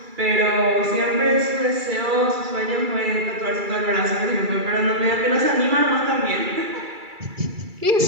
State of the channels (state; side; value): late; left; 2.3 ms